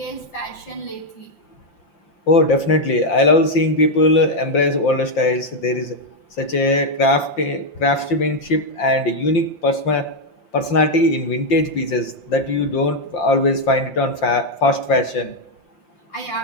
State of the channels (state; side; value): late; right; 5.7 ms